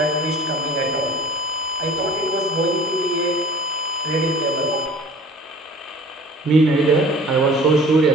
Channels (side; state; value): both; normal; correlation 0.45